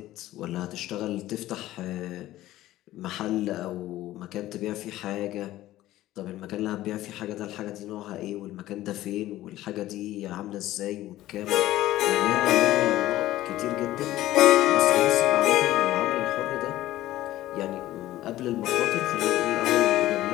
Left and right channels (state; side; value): quieter; right; 15.2 dB